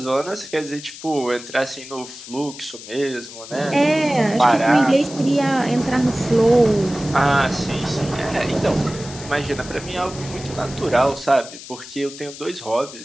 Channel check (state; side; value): noise; left; hiss, 14 dB below the sound